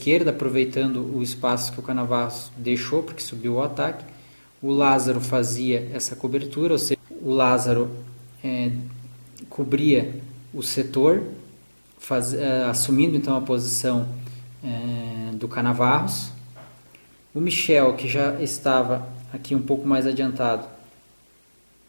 aproveitando o espaço que o Canavarros deixou, porque subiu o ataque, o Lázaro fazia essa cobertura, ou seja, o Lázaro cobria o setor, assumindo então a posição do Canavarros. O Michel, que já estava aqui um pouco mais adiantado,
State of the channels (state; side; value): inverted; both; correlation -1.00